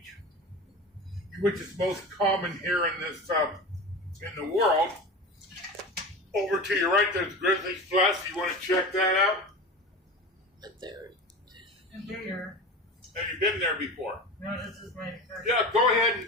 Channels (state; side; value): normal; both; correlation 0.30